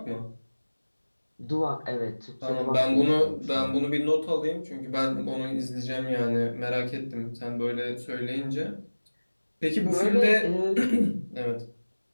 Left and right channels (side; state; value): both; inverted; correlation -1.00